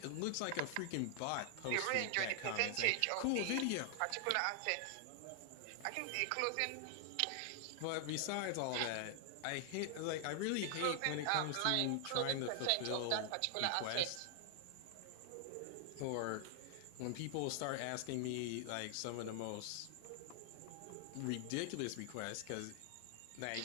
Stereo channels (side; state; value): both; different; correlation 0.00